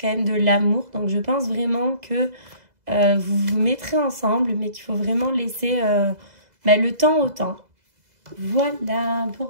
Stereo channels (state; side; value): late; left; 2.0 ms